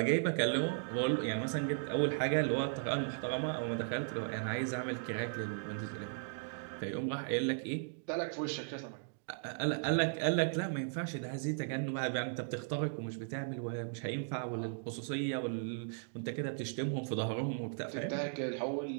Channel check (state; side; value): silent; left; digital silence